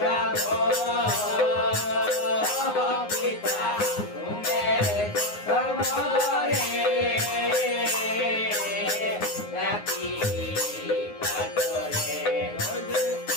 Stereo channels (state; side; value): late; right; 9.6 ms